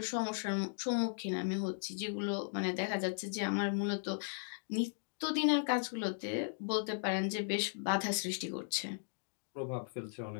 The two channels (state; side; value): silent; right; digital silence